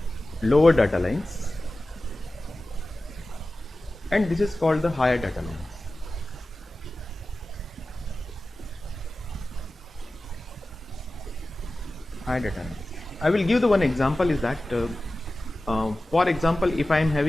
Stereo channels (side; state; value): both; normal; correlation 0.95